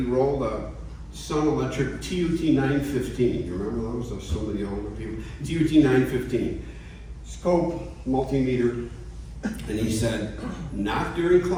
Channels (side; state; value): both; identical; correlation 1.00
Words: rolled a Sun Electric TUT 915. You remember those? Those so many older people. TUT 915. Scope, multimeter. And he said, not during